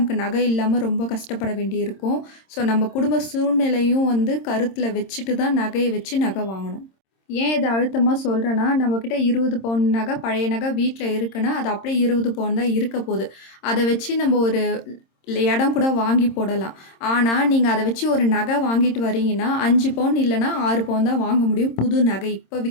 நகை இல்லாம ரொம்ப கஷ்டப்பட வேண்டியிருக்கும். ஸோ நம்ம குடும்ப சூழ்நிலையும் வந்து கருத்துல வச்சுட்டு தான் நகைய வச்சு நகை வாங்கணும். ஏன் இத அழுத்தமா சொல்றேன்னா, நம்மகிட்ட 20 பவுன் நகை, பழைய நகை வீட்ல இருக்குன்னா, அது அப்படியே 20 பவுன் தான் இருக்க போது. அத வச்சு நம்ம ஒரு இடம் கூட வாங்கி போடலாம். ஆனா, நீங்க அத வச்சு ஒரு நகை வாங்கிட்டு வரீங்கன்னா, 5 பவுன் இல்லன்னா 6 பவுன் தான் வாங்க முடியும் புது நகை. இப்ப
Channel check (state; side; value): late; right; 26 ms